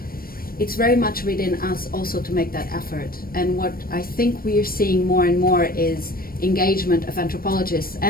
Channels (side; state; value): right; late; 0.43 ms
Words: very much within us also to make that effort. And what I think we are seeing more and more is engagement of anthropologists